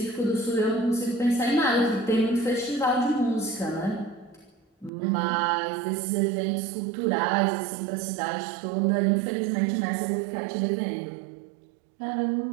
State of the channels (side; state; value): left; drops out; at 4.9 s